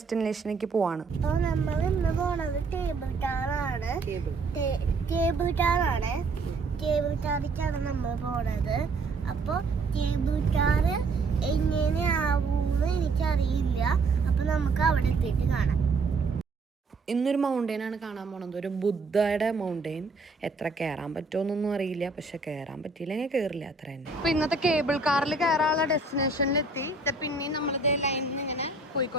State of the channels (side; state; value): left; quieter; 3.8 dB